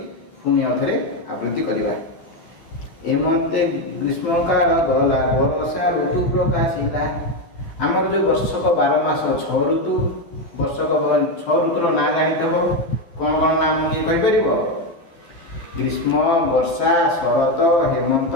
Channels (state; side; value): late; right; 12 ms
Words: ପୁଣି ଆଉଥରେ ଆବୃତ୍ତି କରିବା। ହେମନ୍ତେ ଗ୍ରୀଷ୍ମକାଳ ଗଲା, ବରଷା ଋତୁ ପ୍ରକାଶିଲା। ଆମର ଯେଉଁ ବର୍ଷକ 12 ମାସ 6 ଋତୁ, ବର୍ଷକ 6 ଋତୁର ନାଁ ଜାଣିଥିବ। କ'ଣ କ'ଣ ନାମ କିଏ କହିପାରିବ? ଗ୍ରୀଷ୍ମ, ବର୍ଷା, ଶରତ, ହେମନ୍ତ,